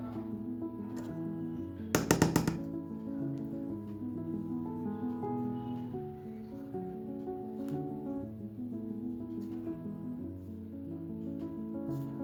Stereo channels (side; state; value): both; identical; correlation 1.00